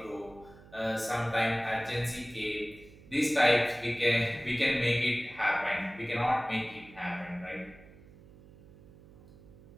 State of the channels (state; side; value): noise; right; hum, 22 dB below the sound